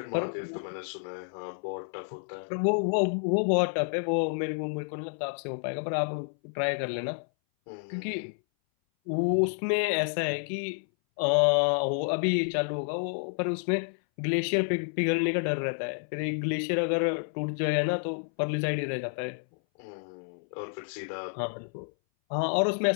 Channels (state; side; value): silent; right; 58 dB below the other